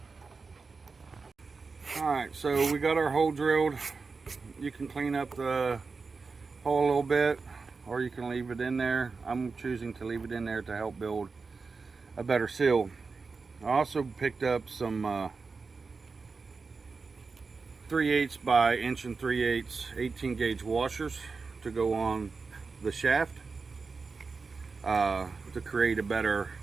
Alright, so we got our hole drilled. You can clean up the hole a little bit, or you can leave it in there. I'm choosing to leave it in there to help build a better seal. I also picked up some 3/8 by 1 3/8 18 gauge washers to go on the shaft to create a better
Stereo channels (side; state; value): left; quieter; 4.5 dB